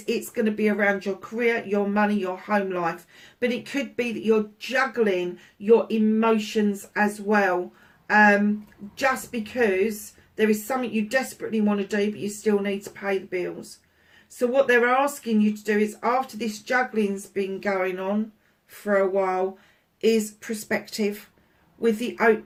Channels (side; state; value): both; identical; correlation 1.00